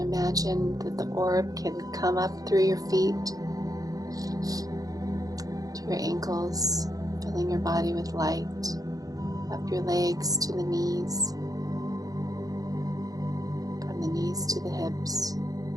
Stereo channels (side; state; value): left; late; 0.17 ms